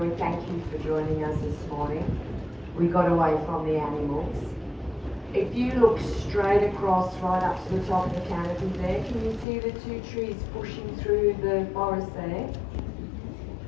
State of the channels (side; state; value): right; drops out; at 9.5 s